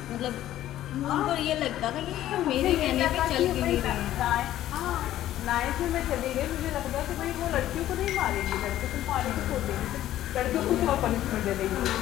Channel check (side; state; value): right; quieter; 13.1 dB